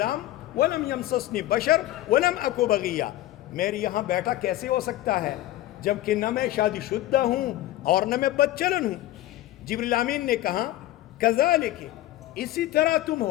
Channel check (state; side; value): quieter; right; 15.1 dB